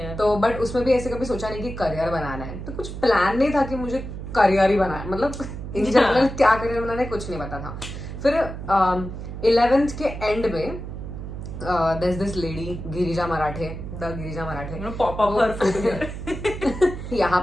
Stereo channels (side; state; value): right; noise; hum, 8 dB below the sound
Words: तो बट उसमें भी ऐसे कभी सोचा नहीं कि करियर बनाना है. तो कुछ प्लान नहीं था कि मुझे करियर ही बनाना है. मतलब इन जनरल क्या करियर बनाना है कुछ नहीं पता था. फिर 11th के एंड में there's this lady Girija Marathe, the Girija Marathe. You know, pop up her food here. यहाँ